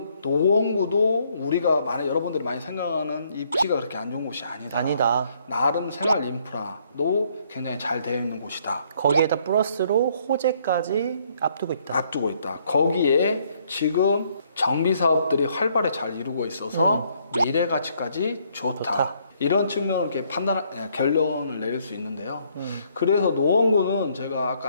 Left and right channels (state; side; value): inverted; both; correlation -0.68